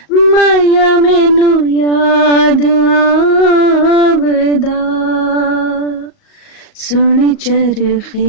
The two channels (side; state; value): right; late; 38 ms